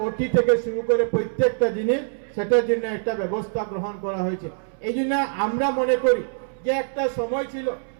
ওটি থেকে শুরু করে প্রত্যেকটা জিনিস, সেটার জন্য একটা ব্যবস্থা গ্রহণ করা হয়েছে। এই জন্য আমরা মনে করি যে একটা সময় ছিল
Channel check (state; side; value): silent; left; 63 dB below the other